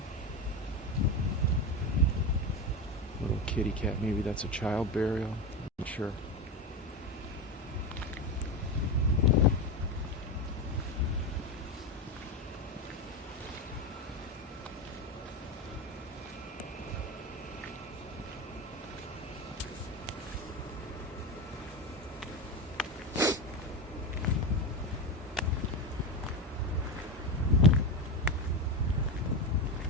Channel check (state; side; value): normal; both; correlation 0.18